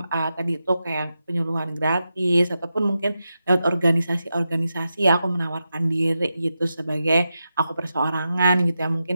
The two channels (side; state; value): both; inverted; correlation -0.89